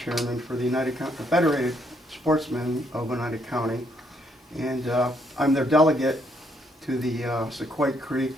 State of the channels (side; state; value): both; normal; correlation 0.72